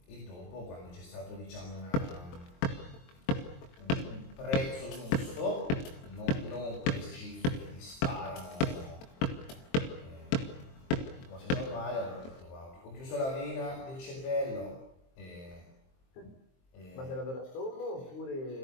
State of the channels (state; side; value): late; right; 23 ms